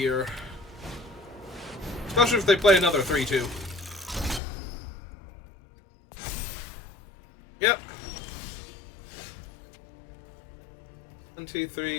Especially if they play another 3/2. Yep. 1, 2,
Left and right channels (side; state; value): right; drops out; at 4.4 s